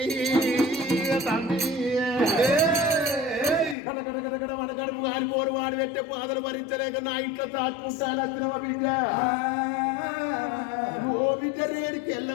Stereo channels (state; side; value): drops out; right; at 3.8 s